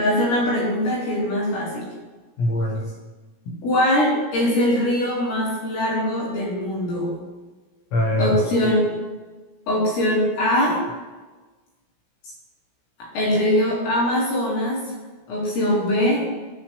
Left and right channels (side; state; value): right; late; 17 ms